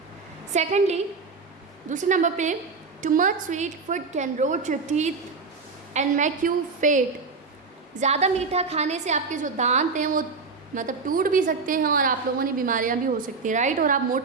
सेकेंडली, दूसरे नंबर पे, too much sweet food can rot your teeth and make you fat, ज़्यादा मीठा खाने से आपके जो दांत हैं वो मतलब टूट भी सकते हैं और आप लोगों ने बीमारियां भी हो सकती हैं, राइट, और आप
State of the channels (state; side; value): quieter; left; 4.5 dB